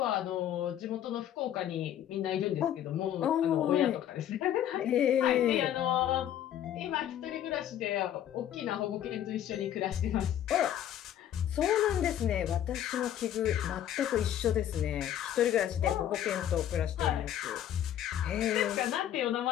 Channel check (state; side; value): quieter; right; 10.9 dB